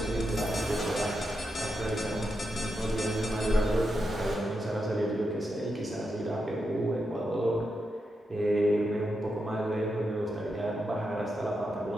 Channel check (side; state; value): both; normal; correlation 0.86